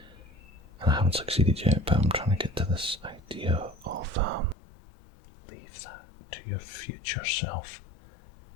I haven't succeeded yet, but I'm trying to get to this idea of leave that to your future self.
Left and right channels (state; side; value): drops out; right; at 4.5 s